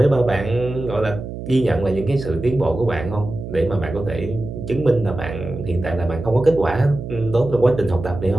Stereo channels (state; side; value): noise; right; hum, 9 dB below the sound